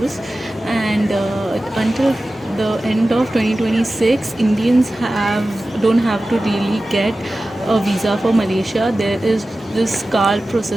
and until the end of 2026, Indians don't have to really get a visa for Malaysia. There is this card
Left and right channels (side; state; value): both; normal; correlation 0.95